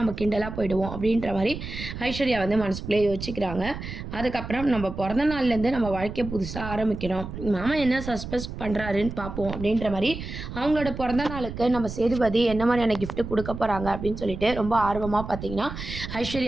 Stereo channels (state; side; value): noise; right; rumble, 9 dB below the sound